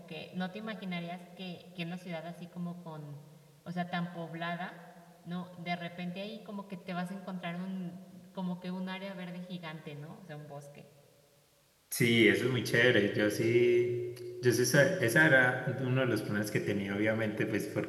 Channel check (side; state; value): both; identical; correlation 1.00